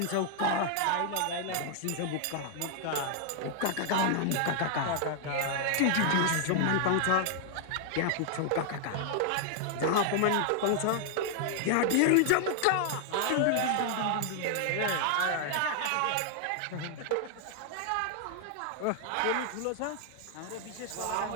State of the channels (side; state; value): both; different; correlation 0.00